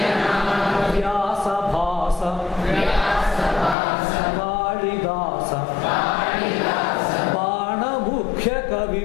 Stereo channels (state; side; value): drops out; right; at 3.8 s